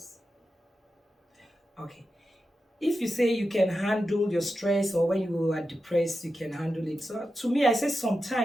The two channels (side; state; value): both; normal; correlation 0.90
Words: Okay. If you say you can handle your stress, or when you are depressed, you can handle it. So to me, I say